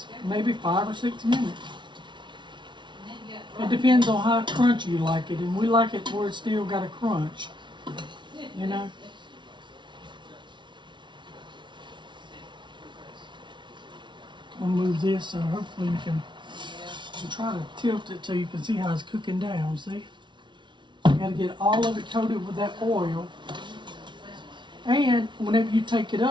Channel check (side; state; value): left; late; 0.23 ms